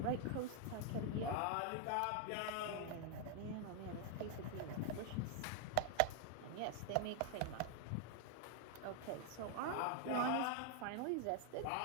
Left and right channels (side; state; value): both; different; correlation 0.00